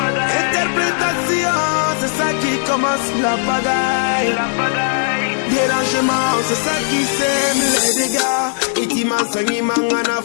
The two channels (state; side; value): silent; right; 65 dB below the other